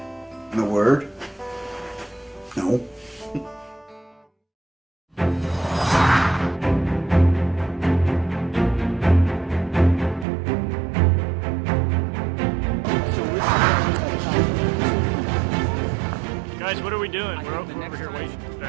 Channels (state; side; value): drops out; left; at 10.2 s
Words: The word? No. Guys, what are we doing? We're over here waiting.